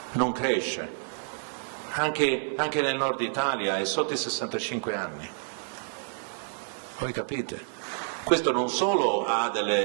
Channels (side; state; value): left; silent; digital silence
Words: non cresce, anche nel nord Italia è sotto i 65 anni, voi capite? Questo non solo ha